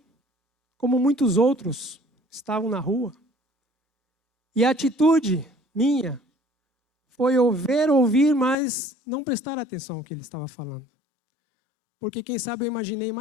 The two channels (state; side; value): drops out; right; at 8.6 s